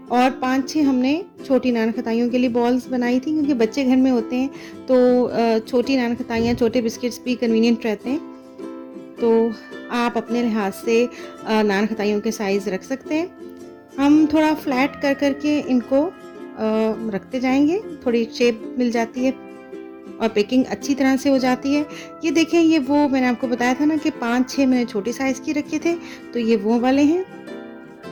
और 5-6 हमने छोटी नान खताइयों के लिए बॉल्स बनाई थी, क्योंकि बच्चे घर में होते हैं तो छोटी नान खताइयाँ, छोटे बिस्किट्स भी कन्वीनियंट रहते हैं। तो आप अपने लिहाज से नान खताइयों के साइज़ रख सकते हैं। हम थोड़ा फ्लैट कर करके इनको रखते जाएंगे, थोड़ी शेप मिल जाती है और पैकिंग अच्छी तरह से हो जाती है। ये देखें, ये वो मैंने आपको बताया था ना कि 5-6 मैंने छोटी साइज़ की रखे थे, तो ये वो वाले हैं।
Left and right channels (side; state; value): both; identical; correlation 1.00